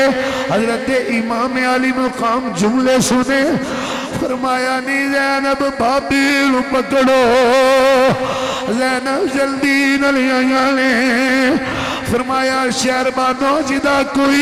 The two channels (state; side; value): identical; both; correlation 1.00